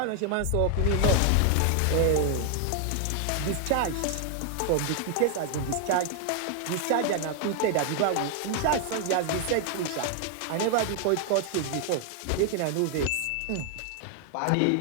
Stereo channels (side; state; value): both; different; correlation 0.00